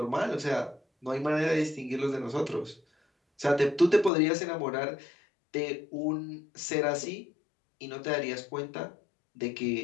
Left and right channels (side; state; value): right; drops out; at 4.1 s